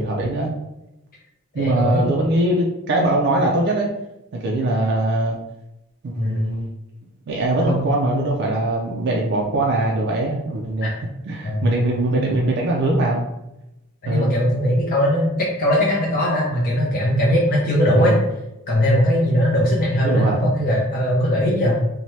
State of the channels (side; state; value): both; normal; correlation 0.50